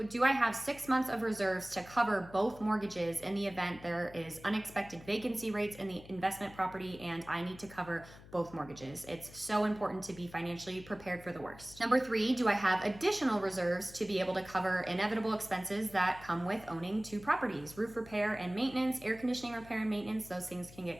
do I have 6 months of reserves to cover both mortgages in the event there is unexpected vacancy rates in the investment property and I need to cover both mortgages? It's so important to be financially prepared for the worst. Number three, do I have additional reserves to be able to cover inevitable expenses that come with owning 2 properties? Roof repair and maintenance, air conditioning repair and maintenance, those things can get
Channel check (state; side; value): noise; left; hum, 19 dB below the sound